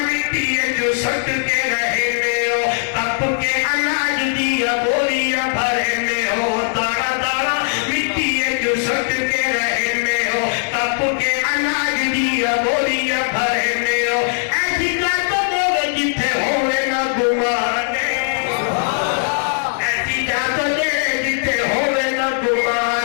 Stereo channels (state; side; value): silent; right; digital silence